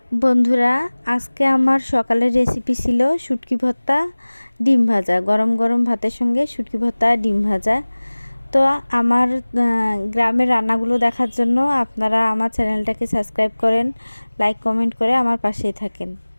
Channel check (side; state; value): both; inverted; correlation -1.00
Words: বন্ধুরা, আজকে আমার সকালের রেসিপি ছিল শুটকি ভর্তা ডিম ভাজা। গরম গরম ভাতের সঙ্গে শুটকি ভর্তা ডিম ভাজা। তো আমার গ্রামের রান্নাগুলো দেখার জন্য আপনারা আমার চ্যানেলটাকে সাবস্ক্রাইব করেন, লাইক কমেন্ট করে আমার পাশেই থাকেন।